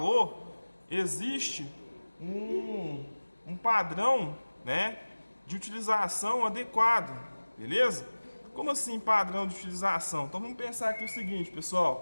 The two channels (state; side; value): inverted; both; correlation -1.00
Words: existe um padrão, né, de utilização adequado, beleza? Como assim padrão de utilização? Então vamos pensar aqui o seguinte,